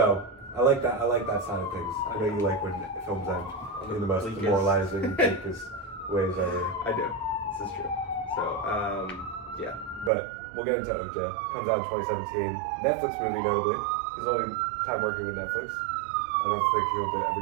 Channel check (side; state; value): left; drops out; at 10.1 s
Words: I like that. I like that side of things. I know you like when films end in the most Bleakest. demoralizing, bleakest ways ever. I do. This is true. So, yeah. But we'll get into Ocha. Comes out in 2017. Netflix movie, notably. His only time working with Netflix. I don't think he'll ever